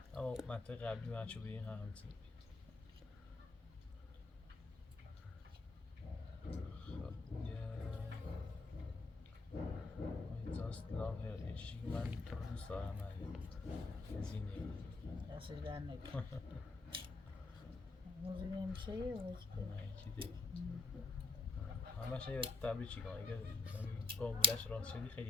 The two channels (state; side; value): quieter; right; 3.4 dB